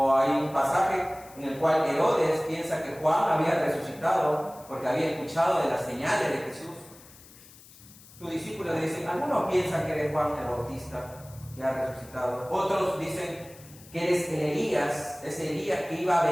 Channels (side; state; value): left; noise; hiss, 22 dB below the sound